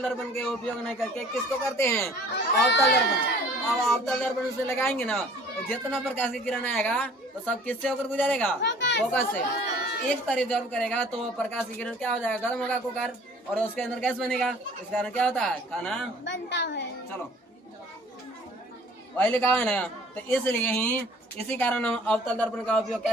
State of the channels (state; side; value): normal; both; correlation 0.52